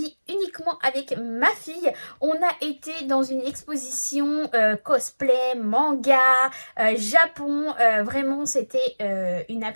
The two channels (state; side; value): inverted; both; correlation -1.00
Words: uniquement avec ma fille. On a été dans une exposition cosplay, manga, Japon, vraiment c'était une